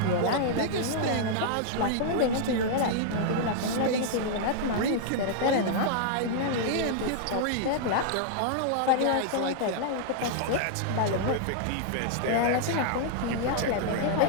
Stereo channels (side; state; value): both; different; correlation -0.01